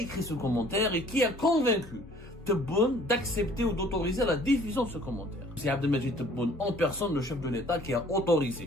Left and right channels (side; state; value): both; normal; correlation 0.54